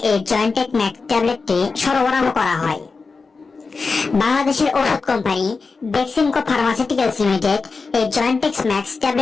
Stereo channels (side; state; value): right; quieter; 4.4 dB